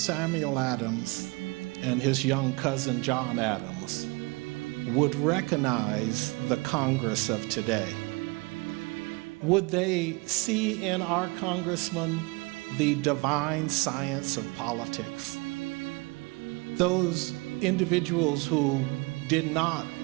Adams and his young cousin John Adams would recognize the Congress of today. Would they see in our congressman the divine science of politics? Those individuals who did not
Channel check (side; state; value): left; quieter; 27.1 dB